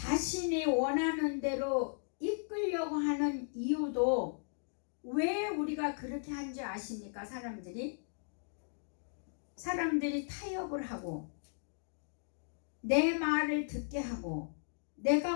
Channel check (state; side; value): silent; right; digital silence